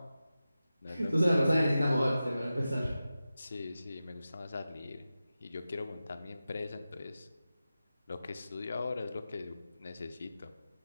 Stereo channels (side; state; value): both; inverted; correlation -0.93